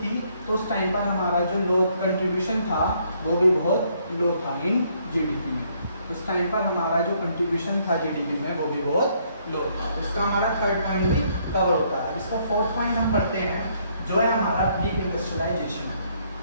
तो उस टाइम पर हमारा जो लो कंट्रीब्यूशन था वो भी बहुत लो था इन जीडीपी में। उस टाइम पर हमारा जो कंट्रीब्यूशन था जीडीपी में वो भी बहुत लो था। इसका हमारा थर्ड पॉइंट भी कवर होता है। इसका फोर्थ पॉइंट हम पढ़ते हैं जो है हमारा ब्लीक इंडस्ट्रियलाइजेशन।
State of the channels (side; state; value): both; inverted; correlation -0.69